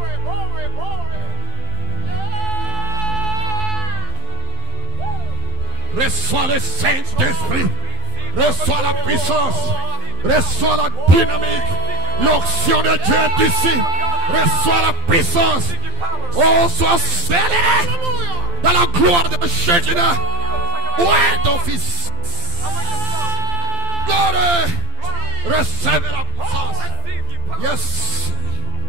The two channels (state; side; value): late; left; 12 ms